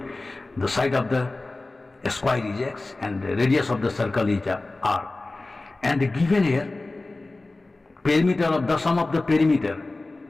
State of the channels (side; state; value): right; quieter; 3.1 dB